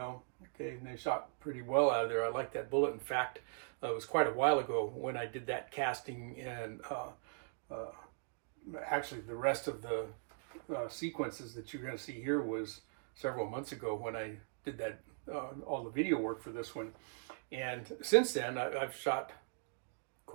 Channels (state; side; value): silent; left; digital silence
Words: Okay, and they shot pretty well out of there. I like that bullet. In fact, it was quite a while ago when I did that casting, and actually the rest of the sequences that you're going to see here was several months ago when I did that all the video work for this one. And since then I've shot